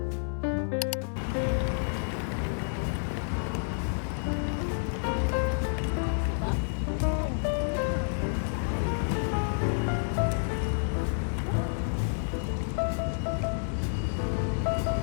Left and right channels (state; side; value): silent; right; digital silence